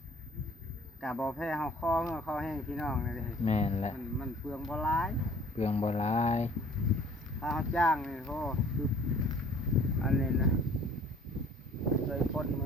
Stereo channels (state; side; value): normal; both; correlation 0.53